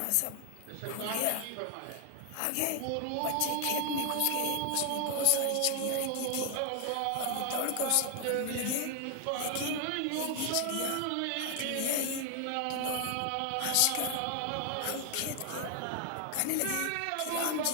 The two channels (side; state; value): both; different; correlation 0.00